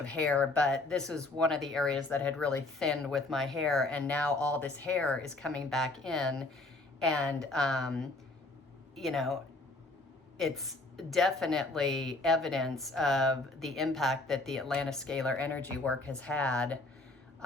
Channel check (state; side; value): quieter; right; 3.1 dB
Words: hair, but this was one of the areas that had really thinned with my hair, and now all this hair is coming back in, and you know, it's definitely evidence of the impact that the Atlantis scalar energy work has had